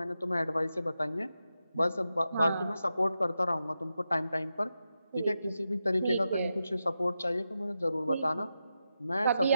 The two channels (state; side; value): inverted; both; correlation -0.89